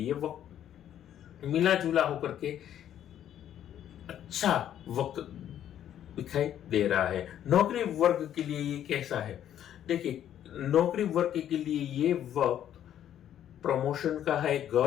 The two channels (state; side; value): quieter; right; 10.7 dB